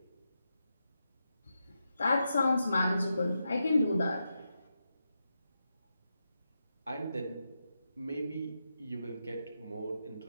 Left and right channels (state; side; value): inverted; both; correlation -0.87